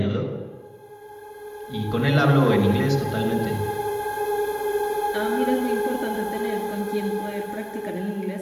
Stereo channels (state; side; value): identical; both; correlation 1.00